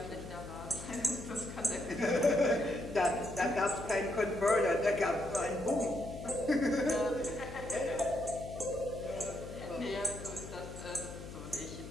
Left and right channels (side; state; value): left; noise; hum, 11 dB below the sound